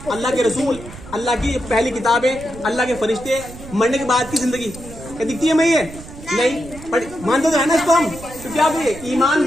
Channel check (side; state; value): right; noise; rumble, 15 dB below the sound